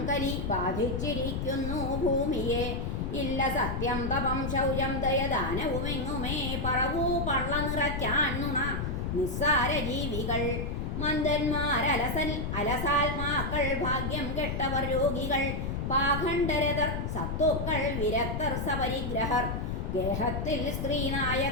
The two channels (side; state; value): left; noise; rumble, 2 dB below the sound